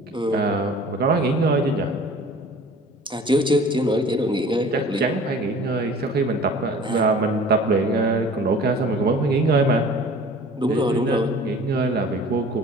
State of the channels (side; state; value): both; normal; correlation 0.46